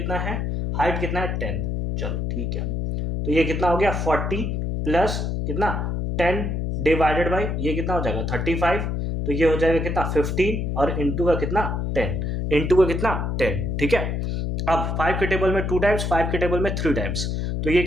है, हाइट कितना है 10। चलो ठीक है, तो ये कितना हो गया 40 प्लस कितना 10 डिवाइडेड बाई ये कितना हो जाएगा 35, तो ये हो जाएगा कितना 15 और इंटू का कितना 10, इंटू का कितना 10, ठीक है। अब 5 के टेबल में 2 टाइम्स, 5 के टेबल में 3 टाइम्स, तो ये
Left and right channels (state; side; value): noise; left; hum, 1 dB below the sound